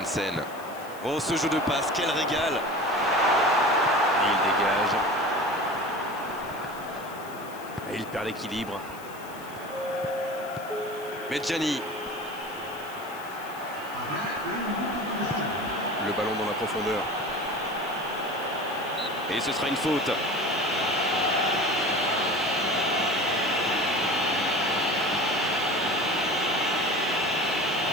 Oh, ce jeu de passe, quel régal! Et il dégage. Et il perd l'équilibre. Medjani. Le ballon dans la profondeur. Et ce sera une faute.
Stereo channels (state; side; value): noise; left; hiss, 20 dB below the sound